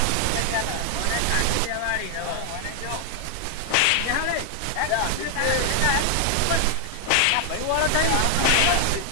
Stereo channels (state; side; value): different; both; correlation 0.00